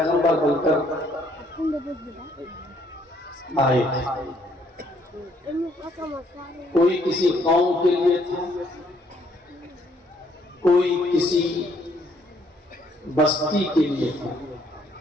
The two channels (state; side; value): normal; both; correlation 0.67